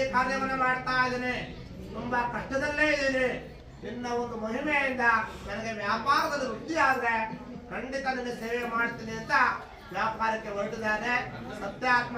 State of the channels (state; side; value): identical; both; correlation 1.00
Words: ಕಾರ್ಯವನ್ನು ಮಾಡ್ತಾ ಇದ್ದೇನೆ, ತುಂಬಾ ಕಷ್ಟದಲ್ಲೇ ಇದ್ದೀನಿ. ನಿನ್ನ ಒಂದು ಮಹಿಮೆಯಿಂದ ನನಗೆ ವ್ಯಾಪಾರದಲ್ಲಿ ವೃದ್ಧಿ ಆದ್ರೆ ಖಂಡಿತ ನಿನ್ನ ಸೇವೆ ಮಾಡ್ತೀನಿ ಅಂತ ವ್ಯಾಪಾರಕ್ಕೆ ಹೊರಟಿದ್ದಾನೆ.